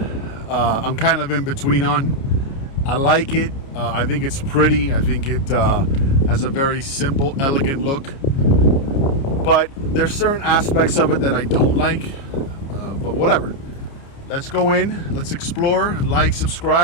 I'm kind of in between on. I like it. I think it's pretty. I think it has a very simple, elegant look. But there's certain aspects of it that I don't like. But whatever. Let's go in. Let's explore. Like,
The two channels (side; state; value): right; late; 29 ms